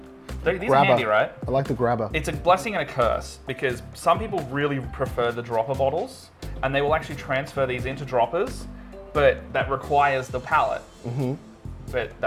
these grabber. are handy, right? I like the grabber. It's a blessing and a curse because some people really prefer the dropper bottles and they will actually transfer these into droppers, but that requires the palette. But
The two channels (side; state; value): both; identical; correlation 1.00